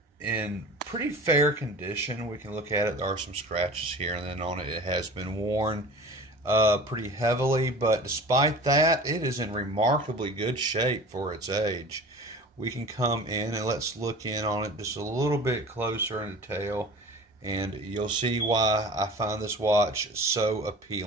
in pretty fair condition. We can look at it. There are some scratches here and then on it. It has been worn pretty heavily, but despite that, it is in remarkably good shape for its age. We can come in and let's look in on it just a little bit closer in detail, and you'll see why I find this watch so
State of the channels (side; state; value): both; normal; correlation 0.39